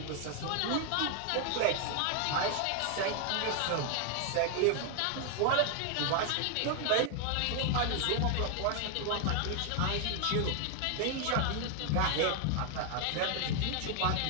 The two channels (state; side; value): different; both; correlation 0.00